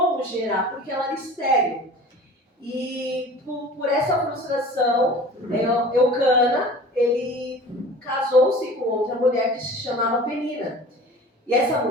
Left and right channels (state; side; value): normal; both; correlation 0.41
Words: gerar, porque ela era estéril. E por essa frustração, Eucana, ele casou-se com outra mulher que se chamava Penina. E essa